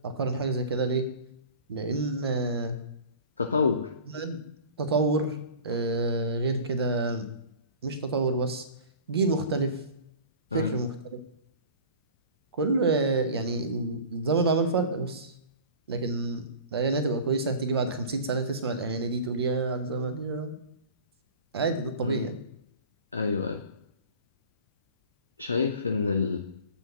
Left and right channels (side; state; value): both; inverted; correlation -0.39